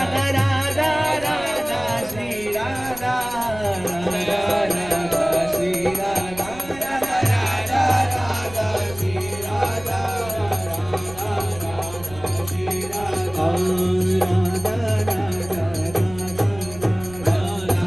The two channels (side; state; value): right; noise; rumble, 17 dB below the sound